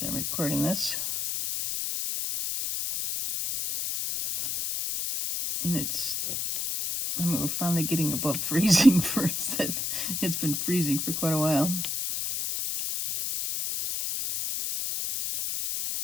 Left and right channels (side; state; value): left; noise; hiss, 2 dB below the sound